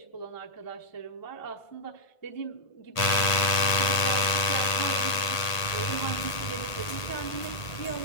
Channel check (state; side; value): late; right; 1.5 ms